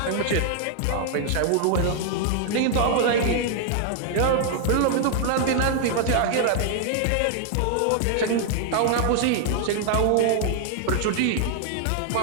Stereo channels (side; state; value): both; different; correlation 0.00